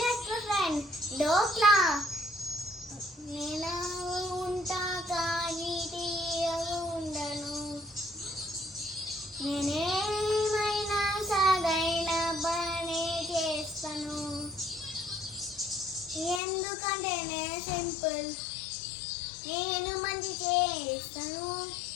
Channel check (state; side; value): drops out; right; at 16.4 s